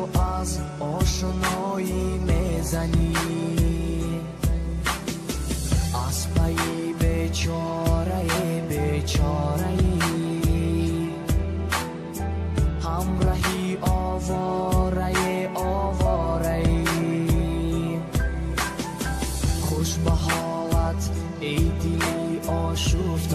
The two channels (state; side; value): identical; both; correlation 1.00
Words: از آشنایی میزنی. از پی بیچاره بیچاره‌ای، همراهی آواره آواره‌ای. خوش به حالت ای دلی